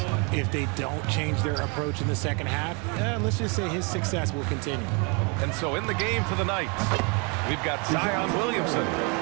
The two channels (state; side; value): quieter; left; 32.8 dB